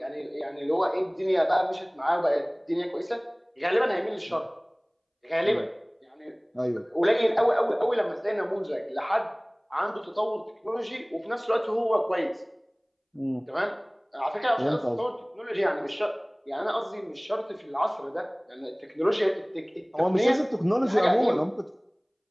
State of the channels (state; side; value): identical; both; correlation 1.00